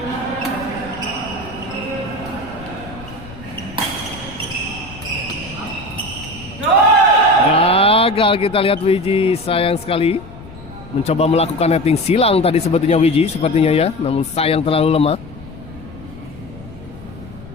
Gagal kita lihat Wiji, sayang sekali. Mencoba melakukan netting silang tadi sebetulnya Wiji sepertinya ya, namun sayang terlalu lemah.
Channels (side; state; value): left; noise; rumble, 17 dB below the sound